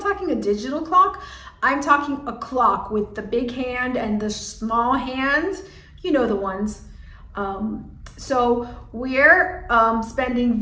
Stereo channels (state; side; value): identical; both; correlation 1.00